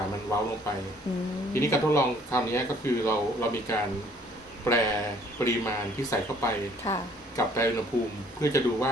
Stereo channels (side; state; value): both; normal; correlation 0.59